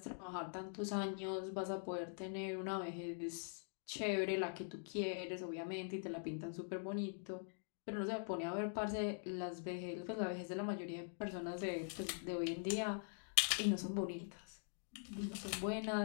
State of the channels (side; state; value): right; silent; digital silence